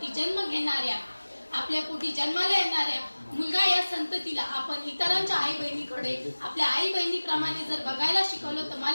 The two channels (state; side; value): inverted; both; correlation -1.00